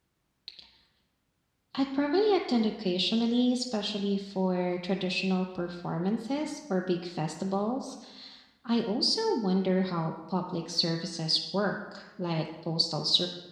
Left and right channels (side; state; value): both; identical; correlation 1.00